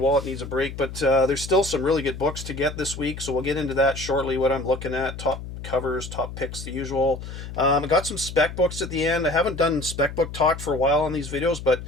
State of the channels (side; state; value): left; noise; hum, 10 dB below the sound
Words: needs a break, but there's still some really good books to get this week, so we'll get into that shortly, what I'm looking at, top covers, top picks, the usual. I got some spec books at the end. I haven't done spec book talk for a while on these videos, but